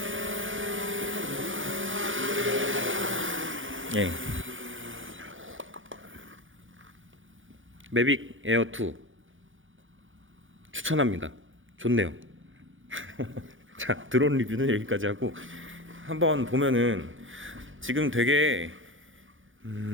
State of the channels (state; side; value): late; left; 0.57 ms